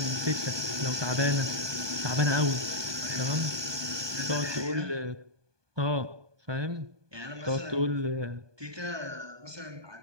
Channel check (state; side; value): late; left; 1.2 ms